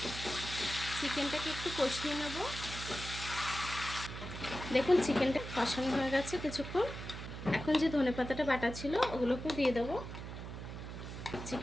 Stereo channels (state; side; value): noise; right; hum, 9 dB below the sound